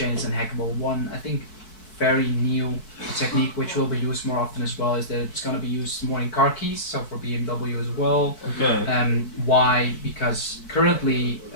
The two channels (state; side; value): late; right; 4.6 ms